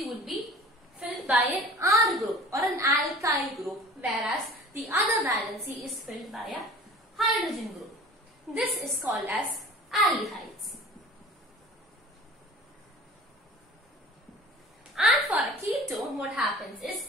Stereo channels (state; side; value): normal; both; correlation 0.42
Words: would be filled by an R group or an alkyl group, whereas the other valency is filled by a hydrogen group. This is called as aldehydes. And for a ketone, what happens is